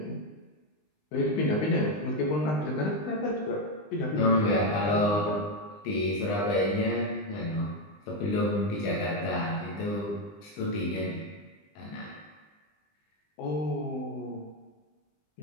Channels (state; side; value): late; right; 20 ms